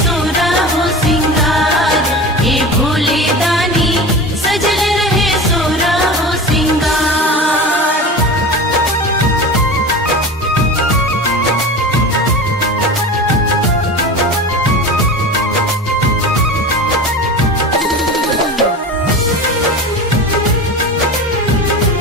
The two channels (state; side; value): normal; both; correlation 0.31